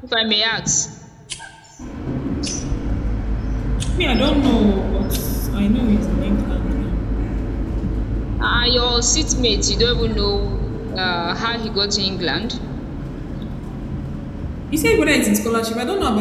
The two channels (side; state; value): both; identical; correlation 1.00